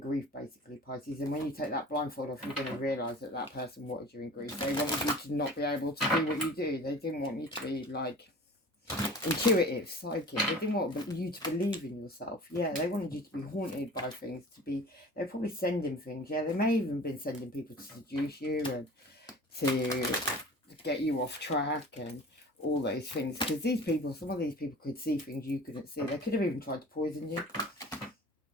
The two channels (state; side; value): normal; both; correlation 0.41